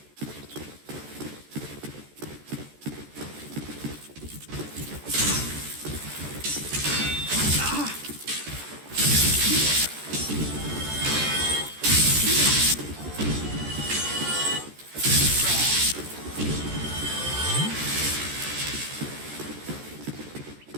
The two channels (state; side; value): late; left; 14 ms